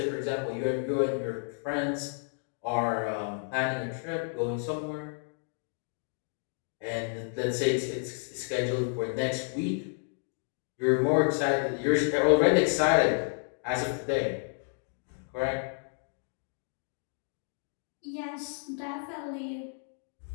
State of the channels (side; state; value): right; silent; 57 dB below the other